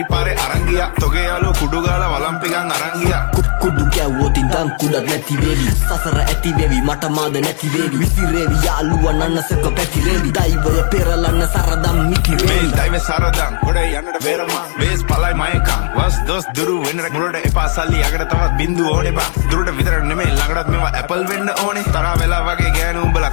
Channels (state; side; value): silent; right; 70 dB below the other